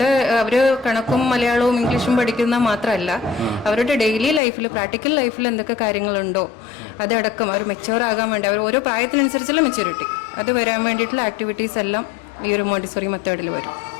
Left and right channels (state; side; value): drops out; right; at 4.4 s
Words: അവര് കണക്കും മലയാളവും ഇംഗ്ലീഷും പഠിക്കുന്ന മാത്രമല്ല, അവരുടെ ഡെയിലി ലൈഫിൽ പ്രാക്ടിക്കൽ ലൈഫിൽ എന്തൊക്കെ കാര്യങ്ങളുണ്ടോ അതടക്കം അവർ മെച്യൂർ ആകാൻ വേണ്ടി അവർ ഓരോ പ്രായത്തിനനുസരിച്ചുള്ള മെച്യൂരിറ്റി അത് വരാൻ വേണ്ടിയിട്ടുള്ള ആക്ടിവിറ്റീസ് എല്ലാം ഈ ഒരു മോണ്ടിസോറി മെത്തേഡിൽ വരും.